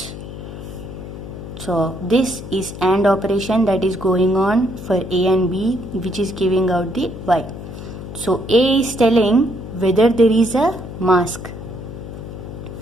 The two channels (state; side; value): noise; left; hum, 11 dB below the sound